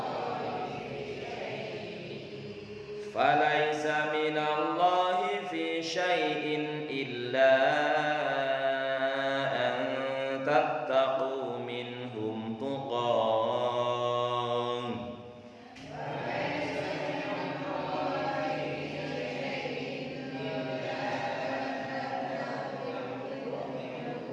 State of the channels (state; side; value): identical; both; correlation 1.00